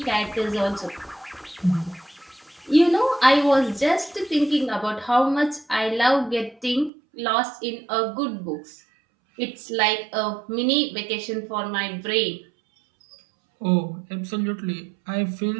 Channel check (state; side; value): drops out; left; at 6.9 s